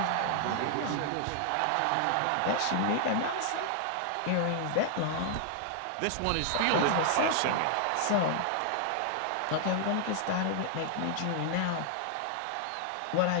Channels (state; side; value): different; both; correlation 0.00